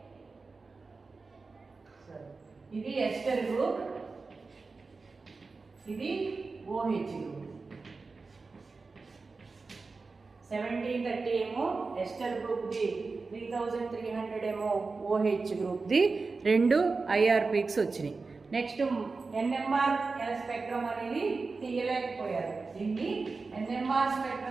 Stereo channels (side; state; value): left; quieter; 4.1 dB